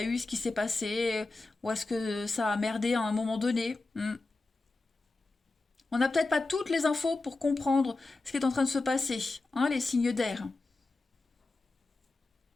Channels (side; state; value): right; quieter; 3.3 dB